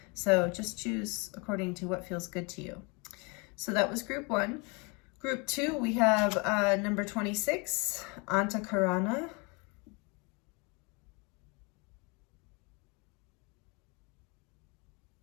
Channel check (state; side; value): quieter; right; 30.5 dB